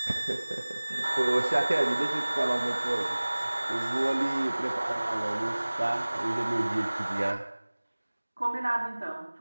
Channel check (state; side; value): inverted; both; correlation -1.00